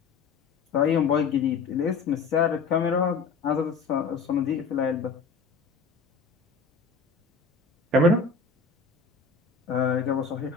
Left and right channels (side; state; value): right; quieter; 4.7 dB